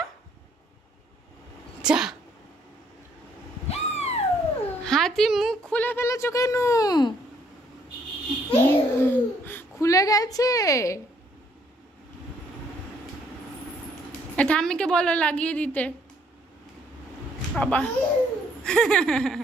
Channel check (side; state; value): both; normal; correlation 0.67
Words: যা। হাতি মুখ খুলে ফেলেছো কেন? খুলে গেছে। ঠাম্মিকে বলো লাগিয়ে দিতে। বাবা